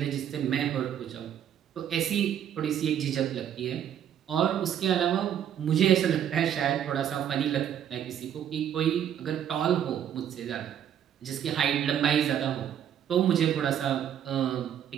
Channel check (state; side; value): quieter; left; 9.7 dB